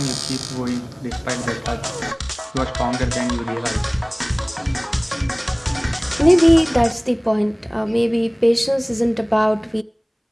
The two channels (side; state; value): both; identical; correlation 1.00